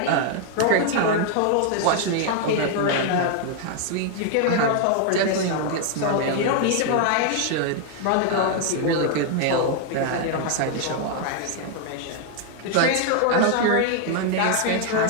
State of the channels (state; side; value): different; both; correlation 0.00